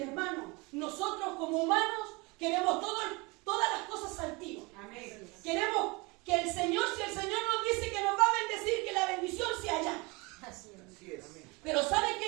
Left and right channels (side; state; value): left; quieter; 26.4 dB